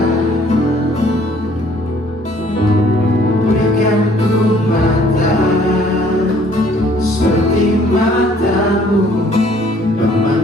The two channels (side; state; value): both; normal; correlation 0.59